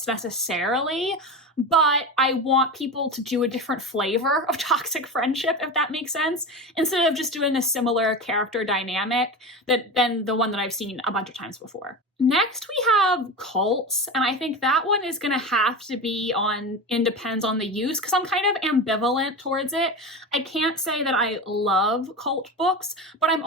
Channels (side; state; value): both; normal; correlation 0.25